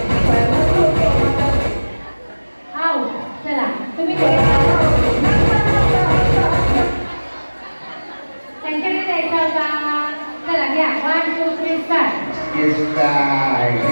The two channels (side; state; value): both; inverted; correlation -1.00